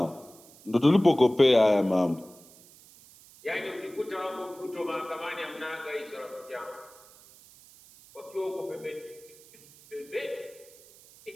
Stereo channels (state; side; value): noise; right; hiss, 23 dB below the sound